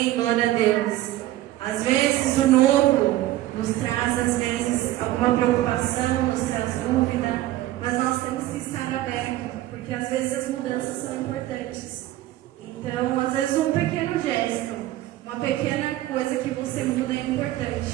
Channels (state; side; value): quieter; left; 15.3 dB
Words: glória a Deus. Às vezes o novo nos traz, às vezes, alguma preocupação, nos traz dúvida, mas nós temos que estar abertos, porque às vezes as mudanças são importantes. Então, às vezes um pequeno gesto, uma pequena coisa que você muda é